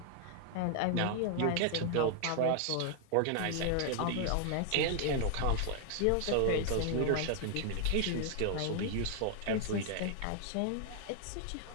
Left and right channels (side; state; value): both; different; correlation 0.00